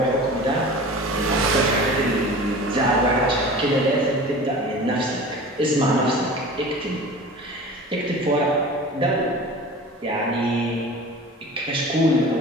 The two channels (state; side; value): normal; both; correlation 0.38